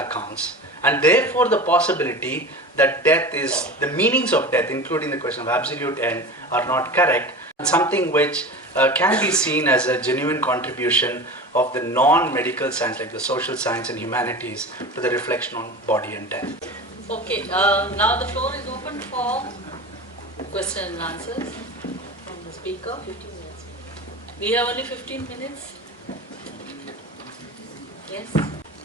And therefore, the possibility that death is, the meanings of death, including the question of absolute end, are not correct. Something which can be seen as a genuine contribution of the non-medical science, like the social science and humanities, to the reflection on body and death. Okay, now the floor is open for question and answers from the speaker. 15 minutes. We have only 15 minutes. Yes?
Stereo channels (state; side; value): normal; both; correlation 0.32